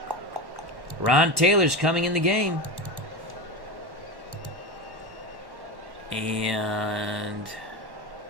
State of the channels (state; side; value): late; left; 1.1 ms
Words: Ron Taylor's coming in the game. And